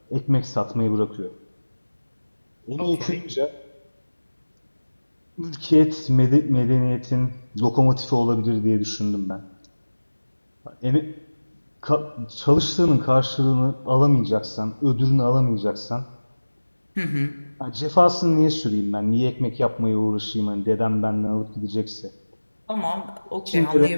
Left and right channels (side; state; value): both; inverted; correlation -1.00